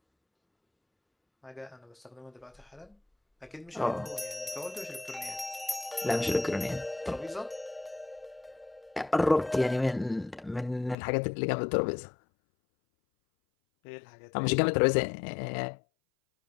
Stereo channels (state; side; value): drops out; right; at 11.0 s